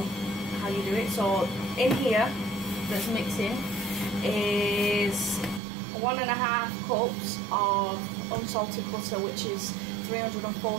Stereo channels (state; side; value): drops out; left; at 5.6 s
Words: how you do it. So in here, that's mixing, is 1.5 cups of unsalted butter, which is